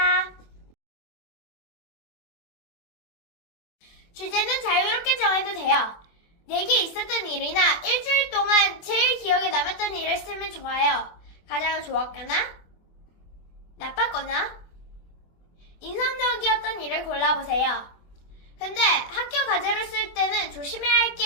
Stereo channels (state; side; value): late; right; 24 ms